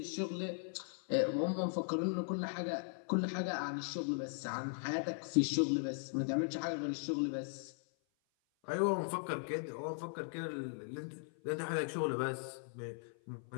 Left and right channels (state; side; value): silent; right; 52 dB below the other